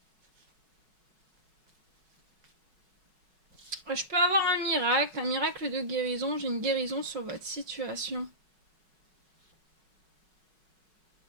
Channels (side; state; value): left; late; 5.4 ms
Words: Je peux avoir un miracle de guérison, j'ai une guérison sur votre situation.